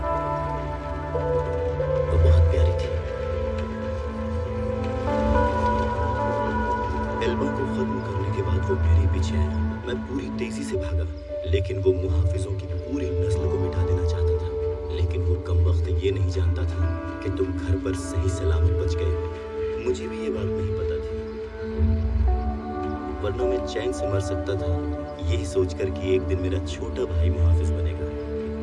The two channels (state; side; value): identical; both; correlation 1.00